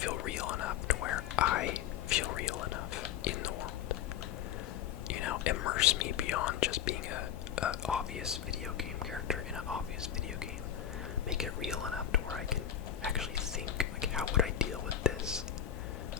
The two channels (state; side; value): quieter; right; 9.8 dB